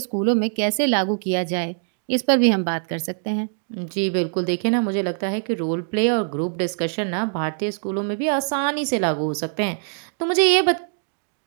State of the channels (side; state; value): left; silent; digital silence